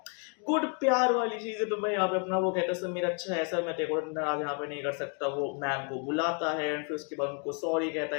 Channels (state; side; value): quieter; right; 37.7 dB